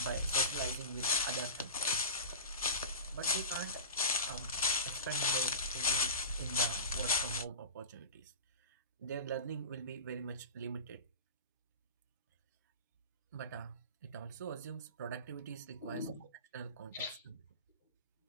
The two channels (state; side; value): inverted; both; correlation -0.31